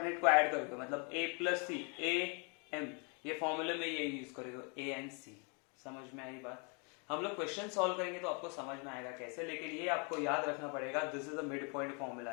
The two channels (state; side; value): quieter; right; 35.3 dB